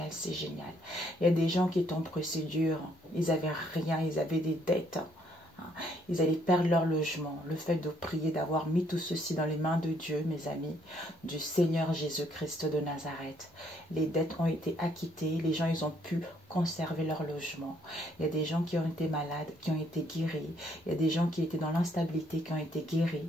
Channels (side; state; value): both; normal; correlation 0.68